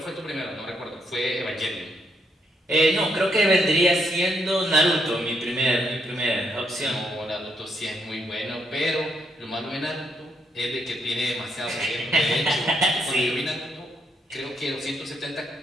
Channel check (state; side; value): normal; both; correlation 0.77